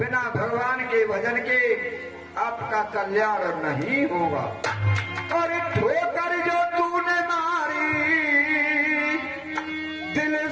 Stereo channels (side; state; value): both; identical; correlation 1.00